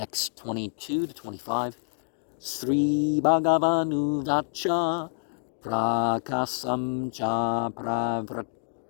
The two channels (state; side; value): silent; right; digital silence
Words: 22-25. Sri Bhagavanu Vacha Prakasam Cha